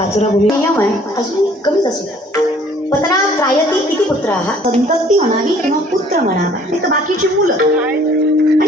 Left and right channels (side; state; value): both; normal; correlation 0.56